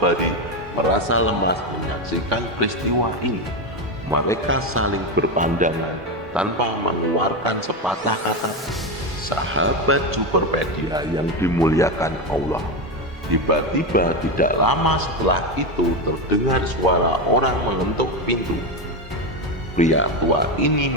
merasa lemas menyaksikan peristiwa ini. Mereka saling berpandangan tanpa mengeluarkan sepatah kata. Sahabat Superpedia yang dimuliakan Allah, tiba-tiba tidak lama setelah itu terdengar suara orang mengetuk pintu. Pria tua ini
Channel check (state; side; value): normal; both; correlation 0.13